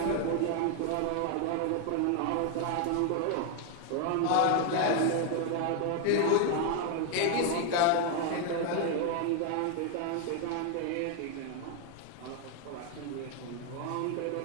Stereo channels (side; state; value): both; different; correlation 0.01